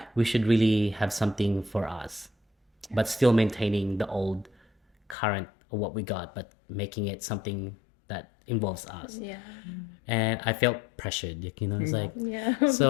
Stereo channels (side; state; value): right; drops out; at 5.2 s